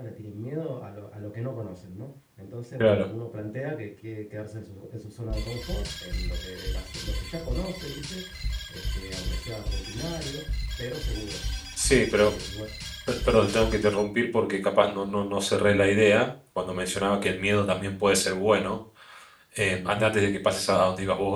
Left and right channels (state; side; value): identical; both; correlation 1.00